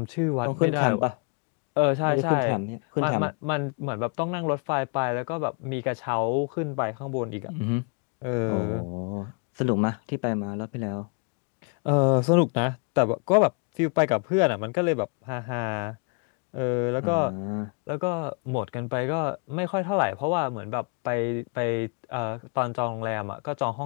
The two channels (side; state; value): right; quieter; 35.6 dB